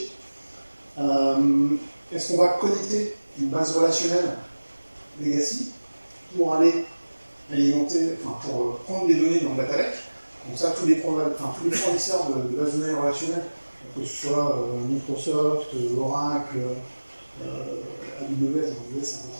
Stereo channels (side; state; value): both; inverted; correlation -1.00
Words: Est-ce qu'on va connecter une base relationnelle legacy pour aller alimenter, pour prendre des données dans le data lake? Donc ça, tous les fournisseurs de bases de données relationnelles, que ce soit Microsoft, Oracle, AWS, c'est un peu